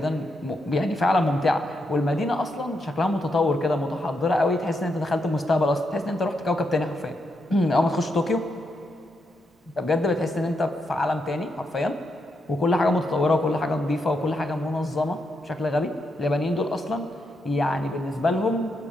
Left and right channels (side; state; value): both; normal; correlation 0.82